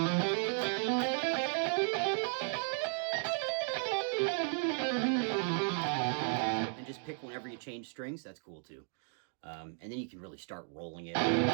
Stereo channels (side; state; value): left; silent; 55 dB below the other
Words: And just pick whenever you change strings. That's cool too. And then you can really start rolling it.